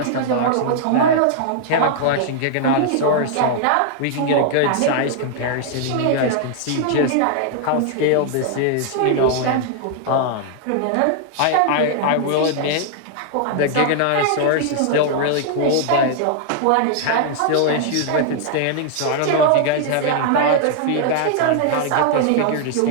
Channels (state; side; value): different; both; correlation -0.01